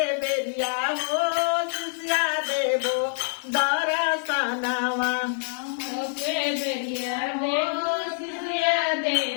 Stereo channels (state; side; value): silent; right; digital silence